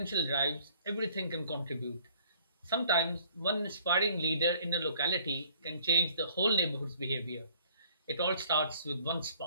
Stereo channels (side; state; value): both; inverted; correlation -0.59